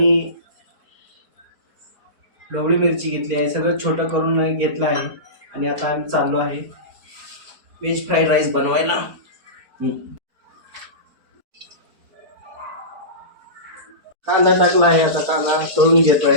ढोबळी मिरची घेतली आहे. सगळं छोटं करून घेतलं आहे आणि आता आम्ही चाललो आहे व्हेज फ्राईड राईस बनवायला. कांदा टाकला आहे, आता कांदा तळून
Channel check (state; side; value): late; left; 4.4 ms